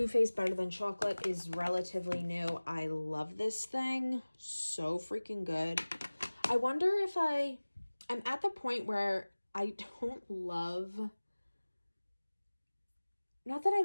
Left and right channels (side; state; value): both; inverted; correlation -1.00